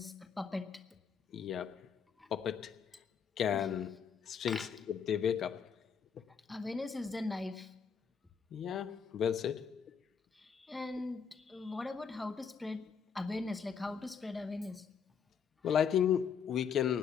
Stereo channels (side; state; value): right; quieter; 6.9 dB